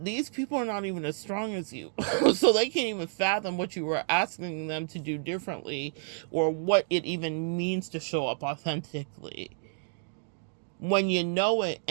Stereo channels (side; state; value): left; silent; digital silence